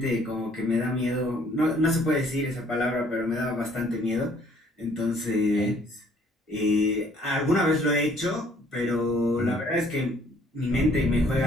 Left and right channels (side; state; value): both; normal; correlation 0.60